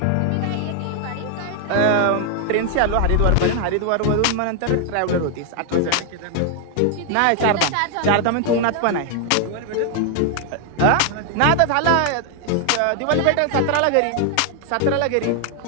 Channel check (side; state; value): both; different; correlation 0.00